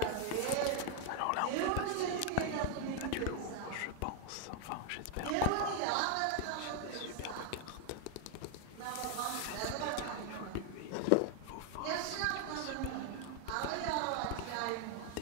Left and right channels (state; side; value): different; both; correlation 0.00